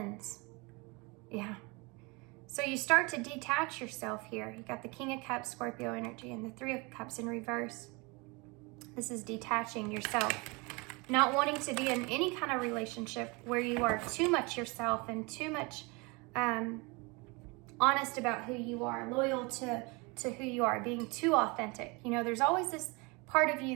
Yeah. So you start to detach yourself here. You got the King of Cups, Scorpio energy, and the Three of Cups in reverse. This is detaching yourself. Not wanting to be in any kind of relationship where you are too much yourself and too much honest about who you are, loyal to who you are, being too authentic. You know, there's always this part of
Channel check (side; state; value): left; quieter; 27.5 dB